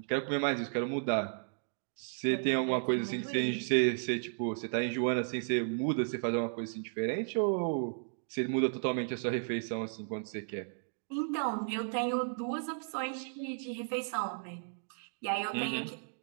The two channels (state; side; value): silent; left; digital silence